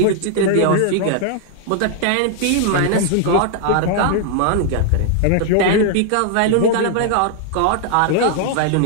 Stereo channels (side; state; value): both; different; correlation 0.00